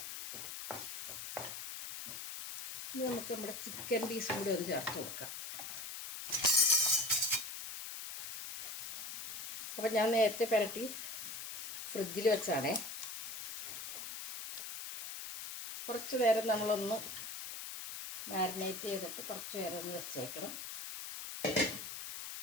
ഇനി നമുക്ക് നമ്മുടെ ചിക്കൻ പീസും കൂടി ഒന്ന് ചേർത്ത് കൊടുക്കാം. അപ്പം ഞാൻ നേരത്തെ പുരട്ടി ഫ്രിഡ്ജിൽ വെച്ചാണേ. കുറച്ച് നേരം നമ്മളൊന്ന് മാരിനേറ്റ് ചെയ്തിട്ട് കുറച്ച് നേരം ഒന്ന് വെച്ചേക്കണം.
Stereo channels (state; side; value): noise; left; hiss, 6 dB below the sound